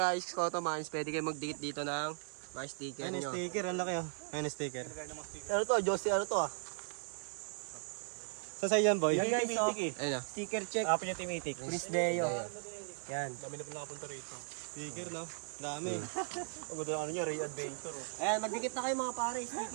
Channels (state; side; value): silent; left; 53 dB below the other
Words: Koto Mines. Pwede kayo magdikit dito ng mga sticker nyo. sticker, ang laki, oh. Ayun, sticker. Ano to, Josie, ano to, ah? Saan yan, boy? Yan, guys, oh. Ayun na. Sticker check. Apo niya Timitik. Prince Deo. Yan. Dami na po nakapunta rito. Sticker, no? Dami. Ang ganda ng ano nyo, Ray Adventure, oh. Ayan, magdikit na kayo mga pare,